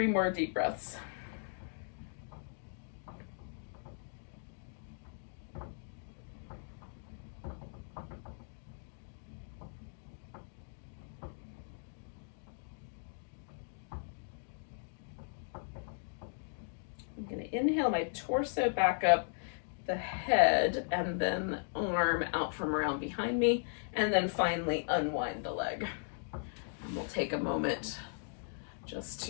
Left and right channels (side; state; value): right; silent; digital silence